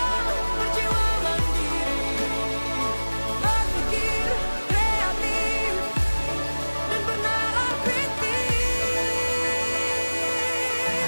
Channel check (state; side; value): inverted; both; correlation -1.00